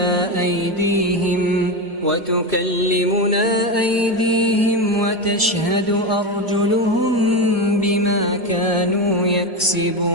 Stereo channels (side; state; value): both; normal; correlation 0.17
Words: وتكلمنا أيديهم وتشهد أرجلهم بما كانوا